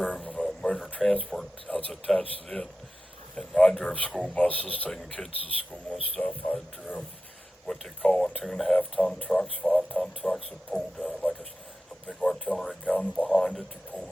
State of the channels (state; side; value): normal; both; correlation 0.93